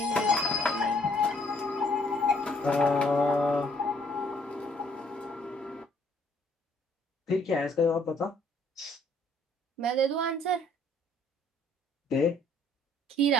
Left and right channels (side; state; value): both; normal; correlation 0.63